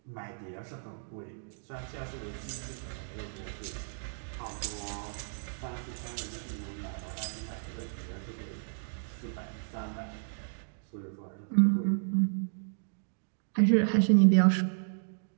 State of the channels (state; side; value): silent; left; digital silence